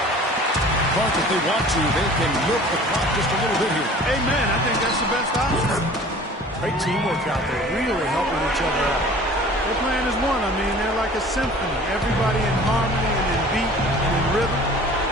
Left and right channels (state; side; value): normal; both; correlation 0.46